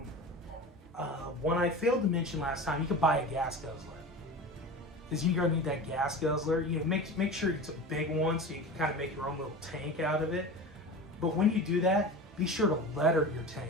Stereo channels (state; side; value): normal; both; correlation 0.32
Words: One I failed to mention last time, you could buy a gas guzzler. Because you're gonna need that gas guzzler. You know, make sure it's a big one so you can kind of make your own little tank out of it. But when you do that, be sure to letter your tank.